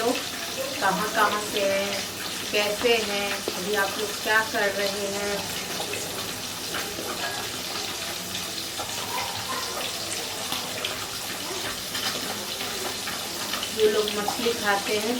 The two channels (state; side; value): identical; both; correlation 1.00